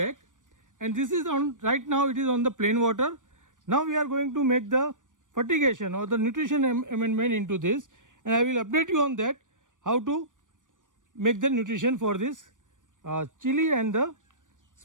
and this is on right now it is on the plain water. Now we are going to make the fertigation or the nutrition amendment into this and I will update you on that how to make the nutrition for this chili and the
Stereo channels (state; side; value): late; left; 0.87 ms